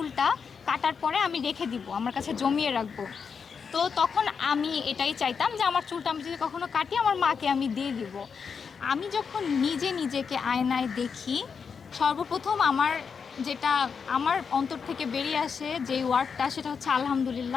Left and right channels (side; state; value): right; quieter; 6.0 dB